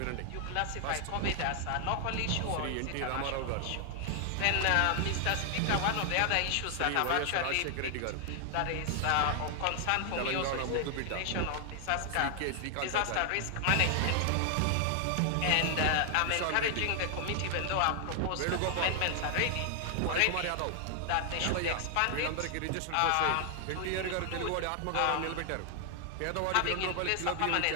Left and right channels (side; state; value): both; different; correlation 0.00